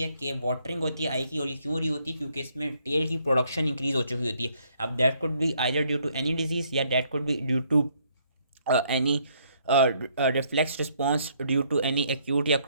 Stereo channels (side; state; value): both; inverted; correlation -0.69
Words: है कि watering होती है आई की, और ये क्यों रही होती है? क्योंकि इसमें टेयर की प्रोडक्शन इंक्रीज हो चुकी होती है। अब that could be either due to any disease या that could be due to any reflex response due to any acute या